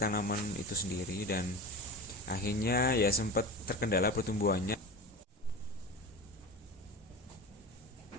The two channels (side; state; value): both; normal; correlation 0.29